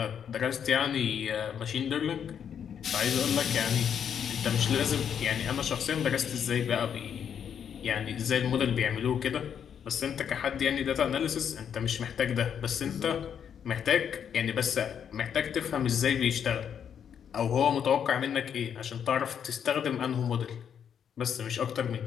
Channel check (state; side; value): quieter; right; 8.2 dB